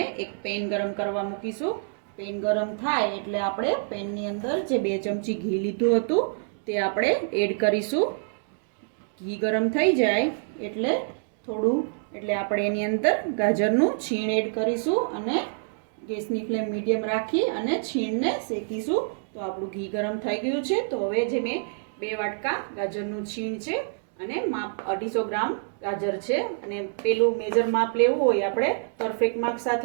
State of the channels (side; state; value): left; silent; digital silence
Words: એક પેન ગરમ કરવા મૂકીશું। પેન ગરમ થાય એટલે આપણે પેનની અંદર જે 2 ચમચી ઘી લીધું હતું તે આપણે એડ કરીશું। ઘી ગરમ થઈ જાય એટલે આપણે એની અંદર ગાજરનું છીણ એડ કરીશું અને ગેસની ફ્લેમ મીડિયમ રાખી અને છીણને શેકીશું। તો આપણું ઘી ગરમ થઈ ગયું છે। તો હવે જે મેં 2 વાટકા ગાજરનું છીણ છે અને માપ 250 ગ્રામ ગાજર છે, અને પેલું મેજર માપ લેવું હોય, આપણે પરફેક્ટ માપ